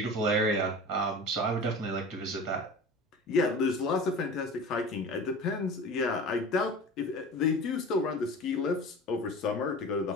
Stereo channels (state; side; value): normal; both; correlation 0.37